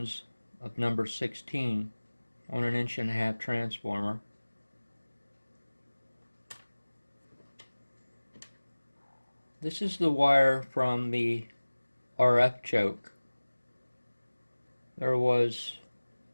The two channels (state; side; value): inverted; both; correlation -1.00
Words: of number 16 on an 1.5" transformer. This is the wire from the RF choke. There was